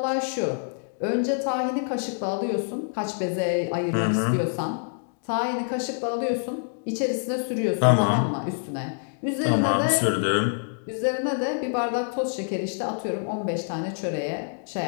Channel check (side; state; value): right; silent; digital silence